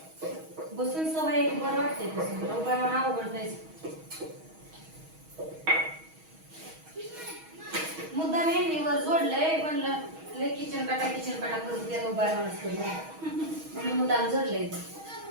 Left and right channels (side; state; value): left; late; 6.3 ms